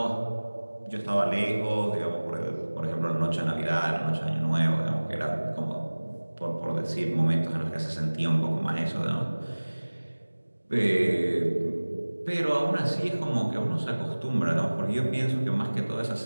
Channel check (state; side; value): inverted; both; correlation -1.00